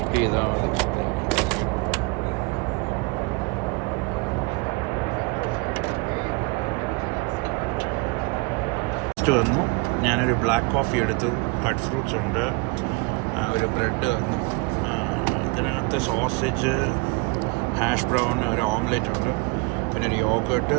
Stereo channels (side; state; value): left; quieter; 27.1 dB